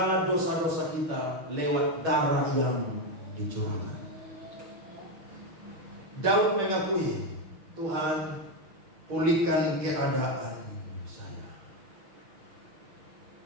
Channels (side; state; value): left; late; 6.3 ms